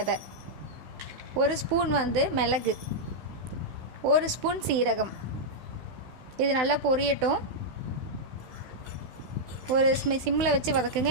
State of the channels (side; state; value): left; late; 16 ms